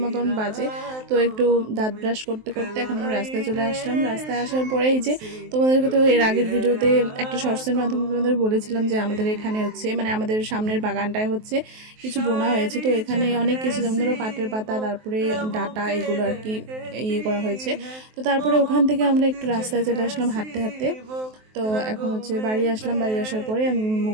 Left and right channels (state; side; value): late; left; 23 ms